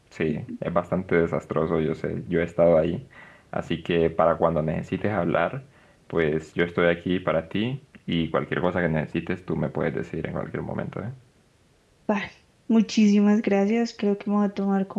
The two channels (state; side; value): identical; both; correlation 1.00